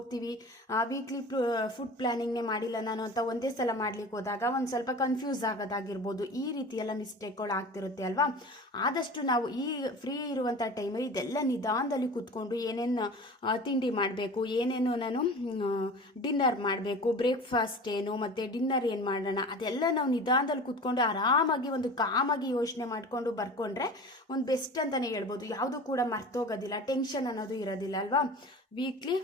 ವೀಕ್ಲಿ ಫುಡ್ ಪ್ಲ್ಯಾನಿಂಗ್ನೇ ಮಾಡಿಲ್ಲ ನಾನು ಅಂತ ಒಂದೇ ಸಲ ಮಾಡ್ಲಿಕ್ಕೆ ಹೋದಾಗ ಒಂದು ಸ್ವಲ್ಪ ಕನ್ಫ್ಯೂಸ್ ಆಗೋದಾಗಿರ್ಬೋದು, ಈ ರೀತಿ ಎಲ್ಲ ಮಿಸ್ಟೇಕ್ಗಳು ಆಗ್ತಿರುತ್ತೆ ಅಲ್ವಾ. ಆದಷ್ಟು ನಾವು ಈ ಫ್ರೀ ಇರುವಂಥ ಟೈಮಲ್ಲಿ ಇದೆಲ್ಲ ನಿಧಾನದಲ್ಲಿ ಕೂತ್ಕೊಂಡು ಏನೇನು ತಿಂಡಿ ಮಾಡಬೇಕು, ಏನೇನು ನಾನು ಡಿನ್ನರ್ ಮಾಡಬೇಕು, ಬ್ರೇಕ್ಫಾಸ್ಟ್ ಏನು ಮತ್ತು ಡಿನ್ನರ್ ಏನು ಮಾಡೋಣ, ಅದೆಲ್ಲ ನಾವು ನಿಧಾನದಲ್ಲಿ ಕೂತ್ಕೊಂಡು ಆರಾಮಾಗಿ ಒಂದು ಕಾಮಾಗಿ ಯೋಚನೆ ಮಾಡಿಕೊಂಡು ಬರ್ಕೊಂಡ್ರೆ ಒಂದು ಬೆಸ್ಟ್ ಅಂತಲೇ ಹೇಳ್ಬೋದು. ಯಾವುದು ಕೂಡ ಮರ್ತೋಗೋದಿಲ್ಲ, ಟೆನ್ಷನ್ ಅನ್ನೋದು ಇರೋದಿಲ್ಲ ಅಲ್ವಾ. ವೀಕ್ಲಿ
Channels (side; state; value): both; normal; correlation 0.37